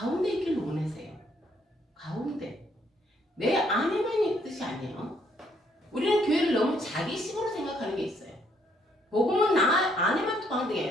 있기를 원하세요. 가운데. 내 안에만 있는 뜻이 아니에요. 우리는 교회를 너무 자기식으로 생각하는 게 있어요. 복음은 나 안에만 통하는 게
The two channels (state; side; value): normal; both; correlation 0.69